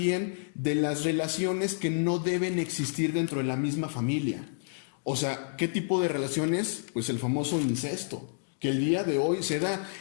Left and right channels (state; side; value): silent; right; digital silence